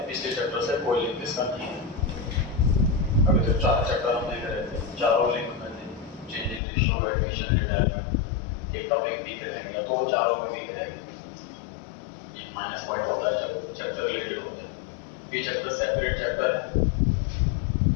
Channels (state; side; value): drops out; right; at 6.6 s